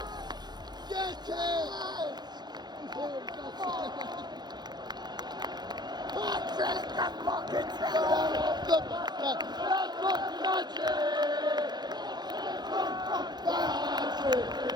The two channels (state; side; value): late; left; 0.20 ms